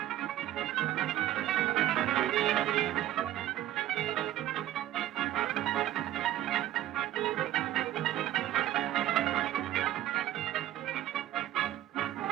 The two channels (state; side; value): quieter; left; 13.2 dB